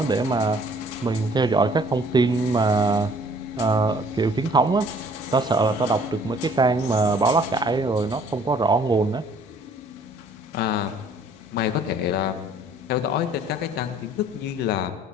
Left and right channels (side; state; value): both; normal; correlation 0.57